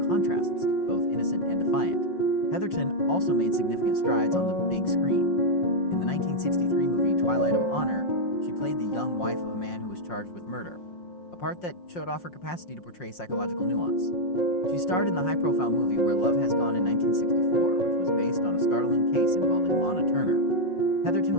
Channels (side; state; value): right; late; 5.6 ms